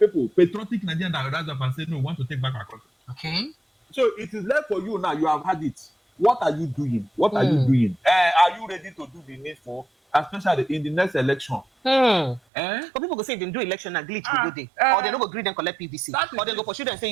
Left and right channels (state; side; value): drops out; left; at 12.4 s